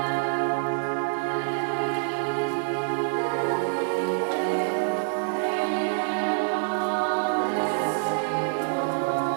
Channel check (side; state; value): left; silent; digital silence